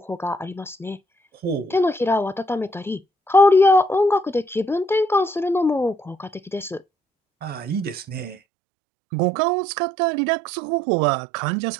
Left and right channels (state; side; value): drops out; left; at 8.3 s